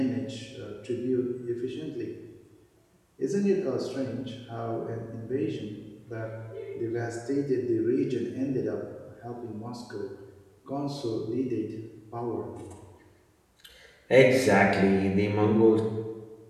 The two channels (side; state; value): both; identical; correlation 1.00